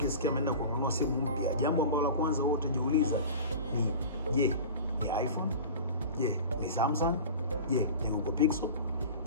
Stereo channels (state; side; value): inverted; both; correlation -0.36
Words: ameenda kununua simu mpya, jambo ambalo la kwanza wewe utajiuliza ni je, ni iPhone? Je, ni Samsung? Je, ni Google Pixel?